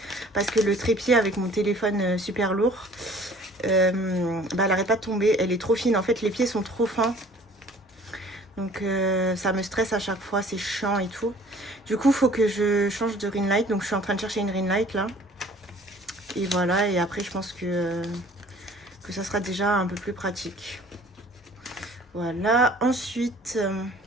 parce que le trépied avec mon téléphone super lourd, elle n'arrête pas de tomber. Elle est trop fine. En fait, les pieds sont trop fins. Donc, ça me stresse à chaque fois. C'est chiant et tout. Du coup, il faut que je change de ring light. Donc, je suis en train de chercher une ring light là. Et voilà. Et après, je pense que ça sera déjà un peu plus pratique. Voilà. Ensuite,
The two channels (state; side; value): normal; both; correlation 0.51